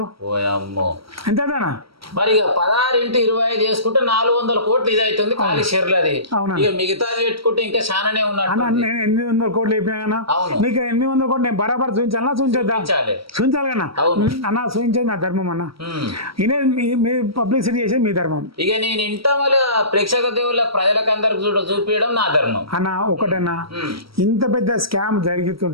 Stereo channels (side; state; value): left; late; 0.75 ms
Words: ఎంతనా మరి ఇక 16 ఇంటూ 25 చేసుకుంటే 400 కోట్లు ఇది అవుతుంది ఖాళీ షేర్లు. అది ఇక మిగతాది పెట్టుకుంటే ఇంకా చాలానే ఉన్నట్టు. నేను 800 కోట్లు అయిపోయినా నీకు 800 కోట్లు నేను బరాబర్ చూపించాలన్నా, చూపించాలి కన్నా అన్న, చూపించేది నా ధర్మం అన్న. ఇదే మీ పబ్లిసిటీ చేసేది మీ ధర్మం. ఇక నేను ఇంట మళ్ళీ ప్రేక్షక దేవుళ్ళ ప్రజలకు అందరికి చూపించడం నా ధర్మం అన్న. ఒకటన్నా, ఇంత పెద్ద స్కామ్